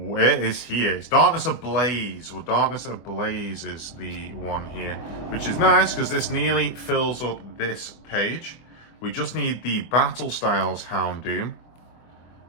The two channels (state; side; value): late; right; 25 ms